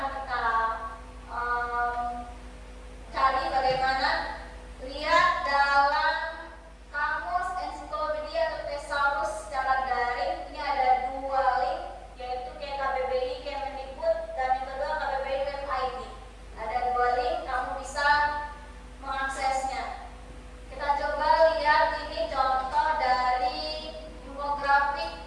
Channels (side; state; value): both; identical; correlation 1.00